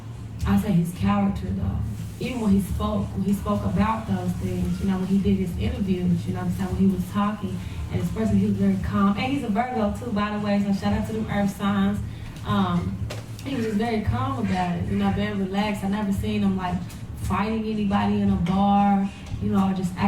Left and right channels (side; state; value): both; identical; correlation 1.00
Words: I say his character, though. Even when he spoke about those things, you know, when he did his interviews, you know what I'm saying, when he was talking, and his person, he was very calm. And he's a Virgo too, by the way, so shout out to them earth signs. He was just very calm about it, you know, very relaxed. I never seen him like fighting anybody in a bar, you know, or just